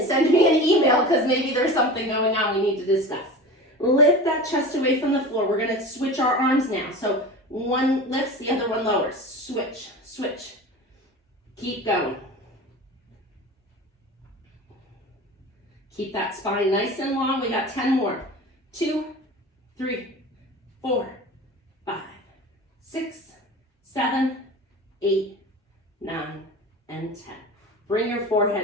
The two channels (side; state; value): both; normal; correlation 0.33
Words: send me an email because maybe there's something going on we need to discuss. Lift that chest away from the floor. We're going to switch our arms now. So one lifts, the other one lowers. Switch, switch. Keep going. Keep that spine nice and long. We got 10 more. 2, 3, 4, 5, 6, 7, 8, 9, and 10. Bring your